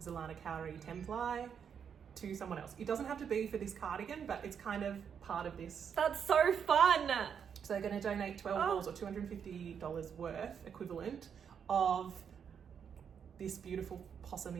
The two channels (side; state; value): left; quieter; 7.5 dB